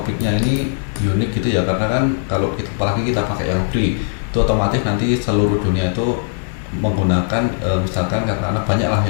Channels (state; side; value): silent; right; 60 dB below the other